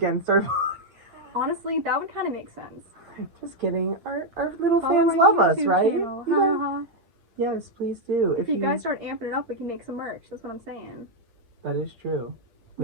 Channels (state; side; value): late; left; 8.6 ms